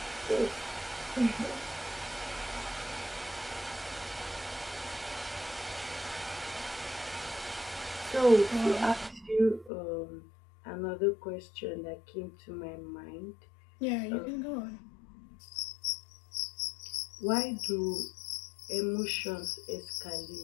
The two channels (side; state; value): right; drops out; at 9.7 s